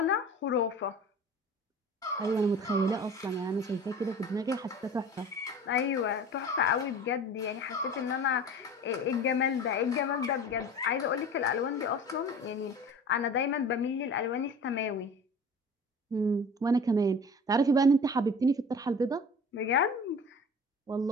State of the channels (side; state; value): both; normal; correlation 0.40